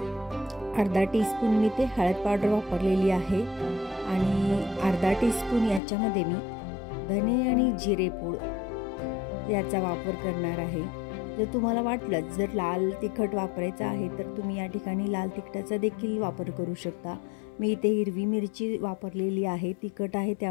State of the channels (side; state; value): right; drops out; at 5.8 s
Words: अर्धा टीस्पून मी ते हळद पावडर वापरलेली आहे आणि अर्धा टीस्पून याच्यामध्ये मी धने आणि जिरे पूड याचा वापर करणार आहे। जर तुम्हाला वाटलं जर लाल तिखट वापरायचं आहे तर तुम्ही या ठिकाणी लाल तिखटाचा देखील वापर करू शकता। मी इथे हिरवी मिरची वापरलेली आहे, तिखट आहे